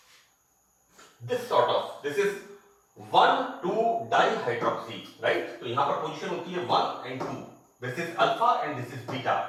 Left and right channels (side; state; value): both; identical; correlation 1.00